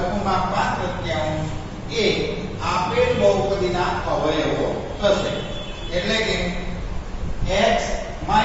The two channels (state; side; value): identical; both; correlation 1.00